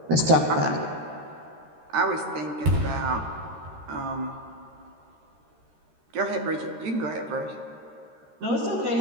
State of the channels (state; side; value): late; left; 13 ms